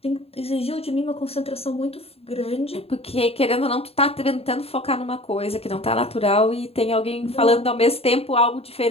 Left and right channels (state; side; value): late; right; 0.29 ms